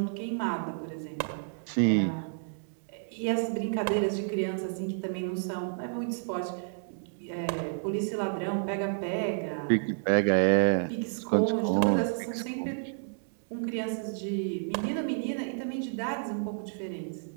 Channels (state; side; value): silent; left; digital silence